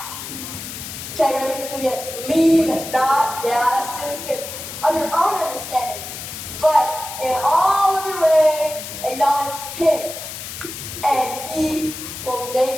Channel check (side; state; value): left; noise; hiss, 9 dB below the sound